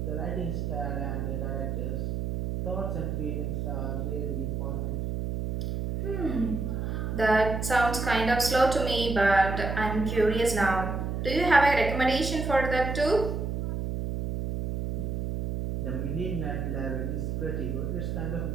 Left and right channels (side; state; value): right; noise; hum, 2 dB below the sound